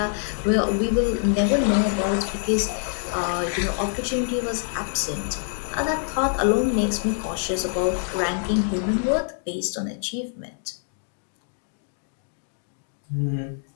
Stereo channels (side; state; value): right; silent; 62 dB below the other